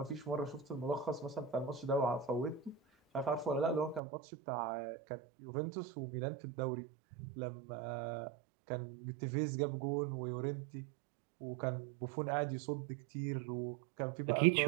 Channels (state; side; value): drops out; left; at 4.0 s